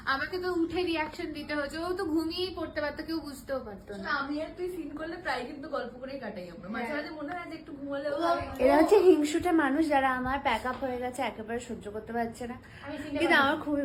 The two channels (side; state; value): both; identical; correlation 1.00